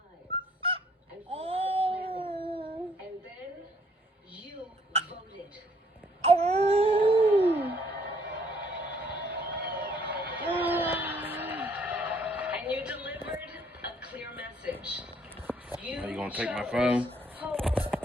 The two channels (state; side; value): normal; both; correlation 0.65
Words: And you delivered a clear message. Are you gonna take my phone?